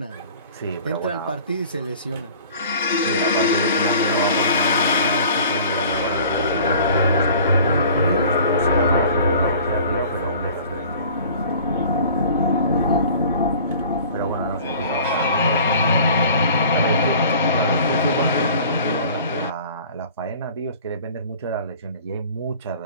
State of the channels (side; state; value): both; inverted; correlation -0.46